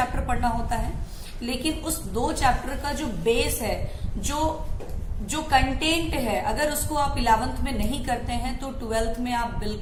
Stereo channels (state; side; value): identical; both; correlation 1.00